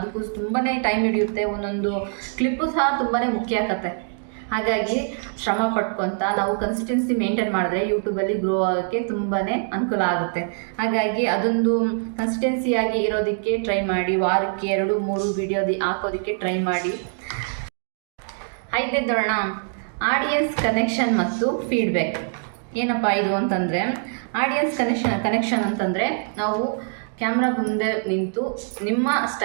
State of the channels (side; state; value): left; silent; 63 dB below the other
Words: ತುಂಬಾ ಟೈಮ್ ಹಿಡಿಯುತ್ತೆ. ಒಂದೊಂದು ಕ್ಲಿಪ್ಪು ಸಹ ತುಂಬಾ ಮುಖ್ಯ ಆಗುತ್ತೆ. ಹಾಗಾಗಿ ಶ್ರಮ ಪಡ್ಕೊತ ನಾವು ಕನ್ಸಿಸ್ಟೆನ್ಸಿ ಮೇಂಟೈನ್ ಮಾಡಿದ್ರೆ ಯೂಟ್ಯೂಬಲ್ಲಿ ಗ್ರೋ ಆಗೋಕ್ಕೆ ತುಂಬಾ ಅನುಕೂಲ ಆಗುತ್ತೆ. ಹಾಗಾಗಿ ಅದೊಂದು ಕನ್ಸಿಸ್ಟೆನ್ಸಿಯಾಗಿ ಇರೋದಕ್ಕೆ ಟ್ರೈ ಮಾಡಿ. ವಾರಕ್ಕೆ 2-3 ವಿಡಿಯೋ ಹಾಕೋದಕ್ಕೆ ಟ್ರೈ ಮಾಡಿ. 5ನೇದು ನೋಡೋಣ, ಆಡಿಯನ್ಸ್ ಕನೆಕ್ಷನ್ ಮತ್ತು ಫೀಡ್ಬ್ಯಾಕ್. ಏನಪ್ಪ ಇದು ಅಂತಂದರೆ, ಆಡಿಯನ್ಸ್ ಕನೆಕ್ಷನ್ ಅಂತಂದರೆ ನಾವು ಕ್ಯಾಮ್ರಾ ಮುಂದೆ ನಿಂತು